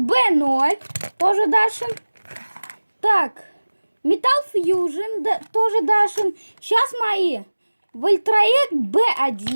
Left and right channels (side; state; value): both; inverted; correlation -1.00